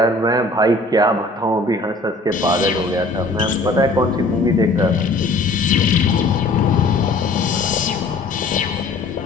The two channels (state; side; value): quieter; right; 3.0 dB